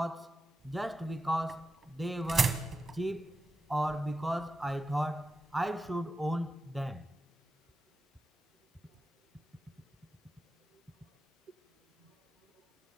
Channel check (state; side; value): normal; both; correlation 0.90